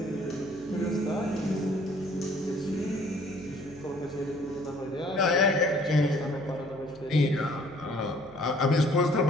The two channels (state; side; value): noise; right; hum, 21 dB below the sound